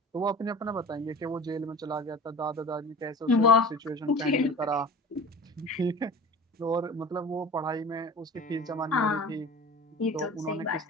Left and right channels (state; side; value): normal; both; correlation 0.40